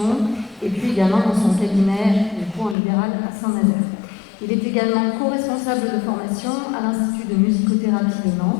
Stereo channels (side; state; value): right; drops out; at 2.8 s